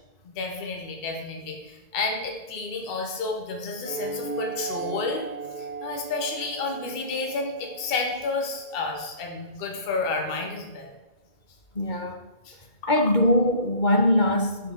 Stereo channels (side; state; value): right; late; 2.7 ms